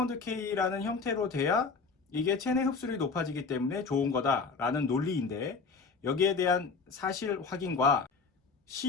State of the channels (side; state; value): right; quieter; 4.8 dB